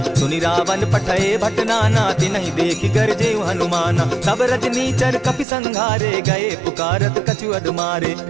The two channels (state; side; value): drops out; left; at 5.5 s